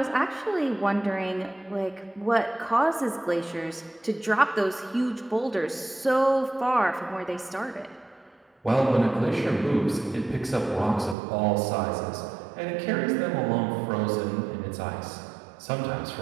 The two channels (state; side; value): drops out; left; at 11.2 s